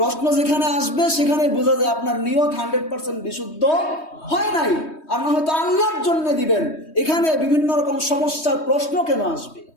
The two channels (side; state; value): right; late; 3.2 ms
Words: প্রশ্ন যেখানে আসবে সেখানে বোঝা যায় আপনার নিয়ত 100% বিশুদ্ধ হয় নাই। আর না হয়তো আল্লাহর জন্য দিবেন, এখানে বিভিন্ন রকম সমস্যার প্রশ্ন কেন আসবে?